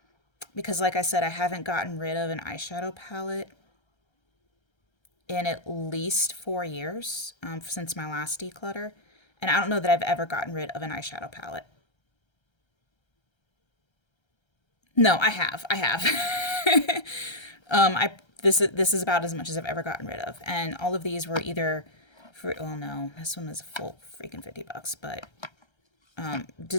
because like I said, I haven't gotten rid of an eyeshadow palette in at least 4 years since my last declutter. And I don't know that I've ever gotten rid of an eyeshadow palette. No, I have. I have. I this is about as much as I've ever gotten rid of, and all of these were either for. Oh no, this one was a full freaking $50, but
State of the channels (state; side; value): late; right; 1.3 ms